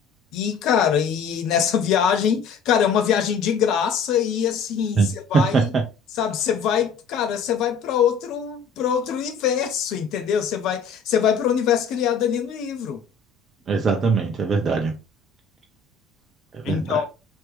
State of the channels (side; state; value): right; quieter; 4.4 dB